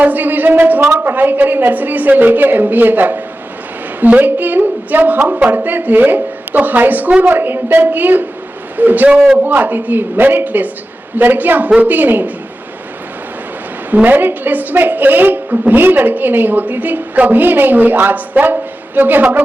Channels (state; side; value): normal; both; correlation 0.93